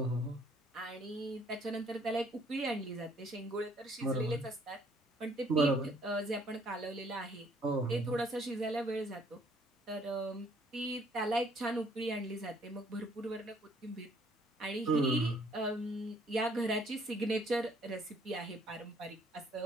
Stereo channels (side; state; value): both; normal; correlation 0.63